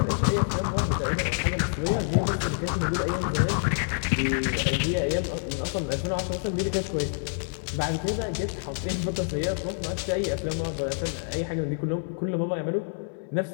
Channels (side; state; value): right; silent; digital silence